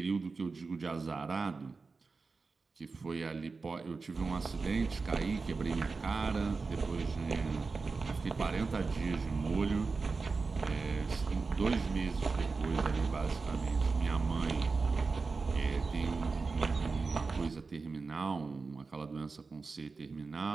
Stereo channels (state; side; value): quieter; left; 4.3 dB